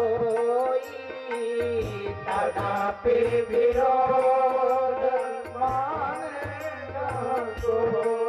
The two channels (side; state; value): both; identical; correlation 1.00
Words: तदापि विरोध मान जहाँ